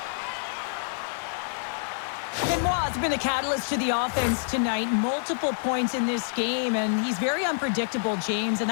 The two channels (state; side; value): silent; right; digital silence